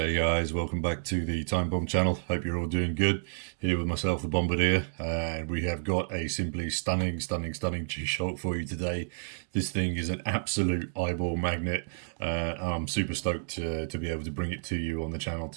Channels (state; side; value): silent; left; digital silence